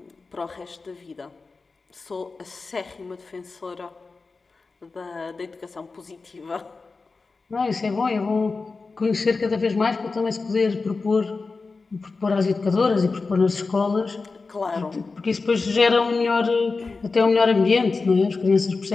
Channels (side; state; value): right; quieter; 4.1 dB